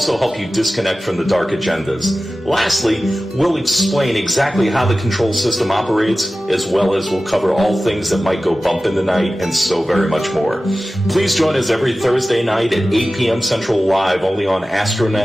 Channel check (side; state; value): both; normal; correlation 0.95